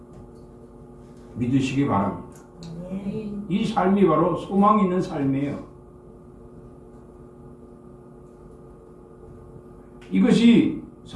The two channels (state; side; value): identical; both; correlation 1.00